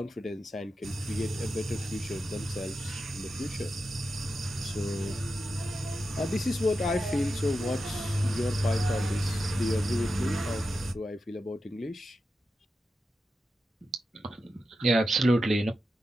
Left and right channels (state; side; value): normal; both; correlation 0.89